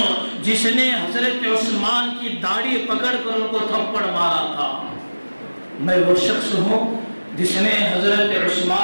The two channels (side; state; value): both; inverted; correlation -1.00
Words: جس نے حضرت عثمان کی داڑھی پکڑ کر ان کو تھپڑ مارا تھا۔ میں وہ شخص ہوں جس نے حضرت